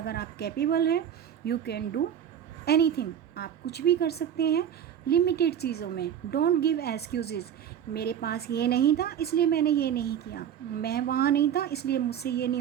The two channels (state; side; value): quieter; left; 9.3 dB